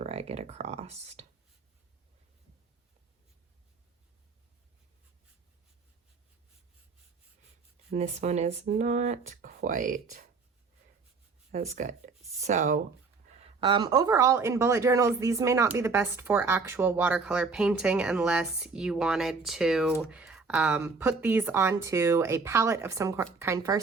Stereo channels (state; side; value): quieter; left; 4.5 dB